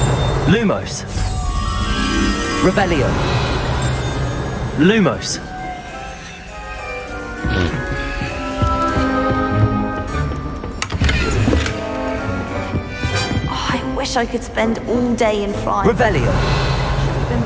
Lumos. Revelio. Lumos. I wish I could spend all day in France. Revelio. Been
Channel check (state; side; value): identical; both; correlation 1.00